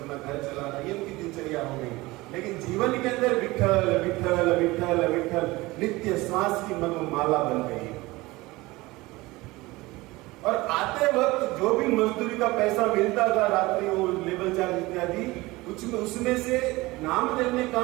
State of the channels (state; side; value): quieter; left; 20.9 dB